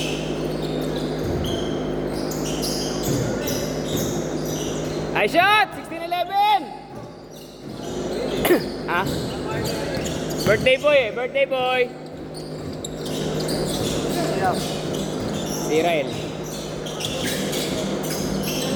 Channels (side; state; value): both; identical; correlation 1.00